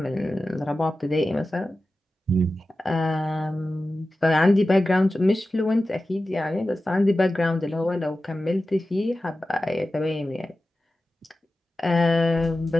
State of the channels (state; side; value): normal; both; correlation 0.94